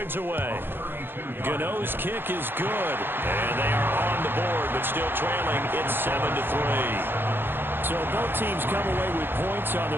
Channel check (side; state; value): left; late; 0.10 ms